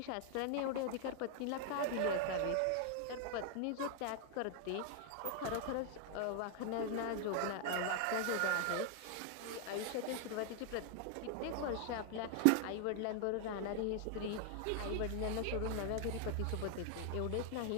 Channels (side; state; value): both; different; correlation 0.00